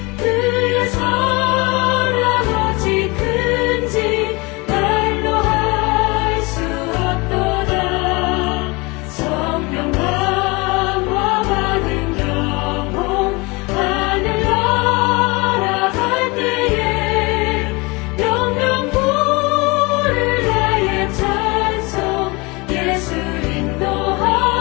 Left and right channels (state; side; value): quieter; right; 26.0 dB